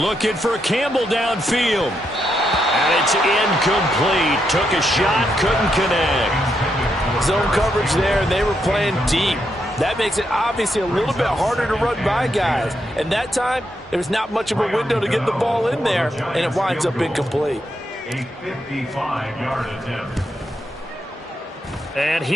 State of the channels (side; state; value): both; normal; correlation 0.80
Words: for Campbell downfield. And it's incomplete. Took a shot, couldn't connect. Zone coverage there, and they were playing deep. That makes it obviously a little bit harder to run by guys. And that time, there was not much of a window to get the ball in there, and it winds up incomplete. A 55-yard attempt. And